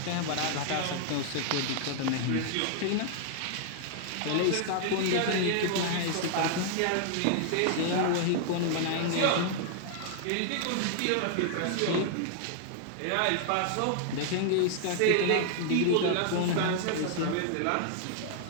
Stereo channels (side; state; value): both; different; correlation 0.00